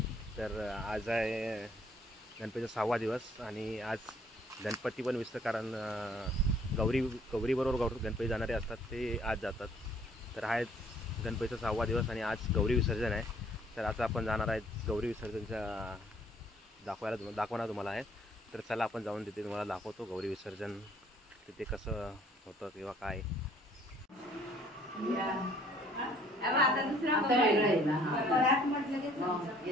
तर आज आहे गणपतीचा 6वा दिवस आणि आज गणपती पण विसर्जन, कारण गौरीबरोबर गणपती जाणारे असतात ते आज जातात। तर हा गणपतीचा 6वा दिवस आणि आज गौरी विसर्जन आहे। तर आता आपण जाणार आहे गौरी विसर्जनच्या दाखवणार तुम्हाला आहे। तर चला आपण जाऊन तिथे तुम्हाला दाखवतो गौरी विसर्जन तिथे कसं होतं किंवा काय। आता दुसरा वेगळा आहे ना, परत म्हटलं की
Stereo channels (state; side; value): normal; both; correlation 0.60